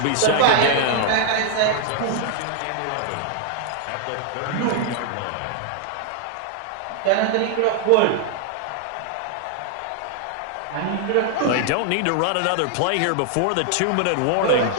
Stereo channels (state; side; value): different; both; correlation 0.00